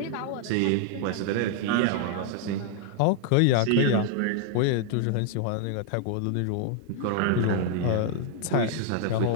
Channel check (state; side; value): different; both; correlation -0.01